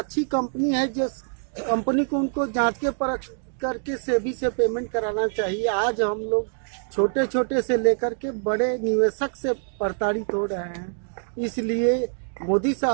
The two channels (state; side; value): silent; left; digital silence